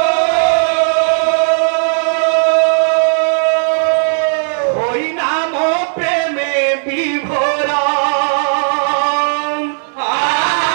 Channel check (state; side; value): silent; left; digital silence